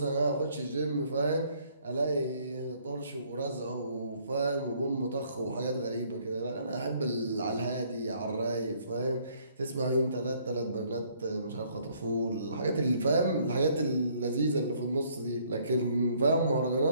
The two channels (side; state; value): both; inverted; correlation -0.64